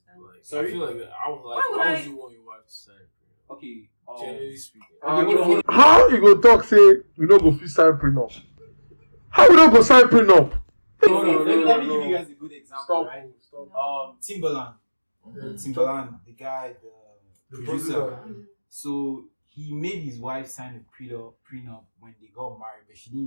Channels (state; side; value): inverted; both; correlation -1.00